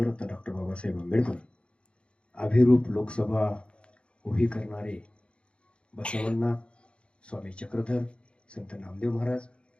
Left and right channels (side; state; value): right; late; 0.058 ms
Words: डॉक्टर बाबासाहेब आंबेडकर, अभिरूप लोकसभा उभी करणारे बसवण्णा, स्वामी चक्रधर, संत नामदेव महाराज,